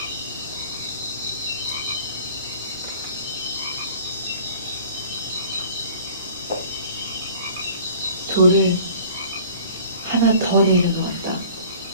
돌을 하나 더 내려놓았다.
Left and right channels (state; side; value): inverted; both; correlation -0.48